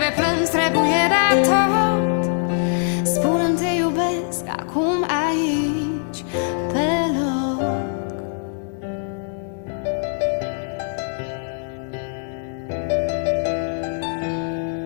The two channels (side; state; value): right; silent; digital silence